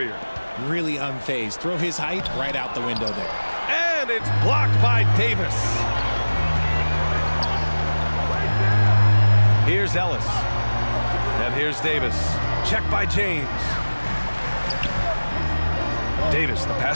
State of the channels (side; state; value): both; inverted; correlation -1.00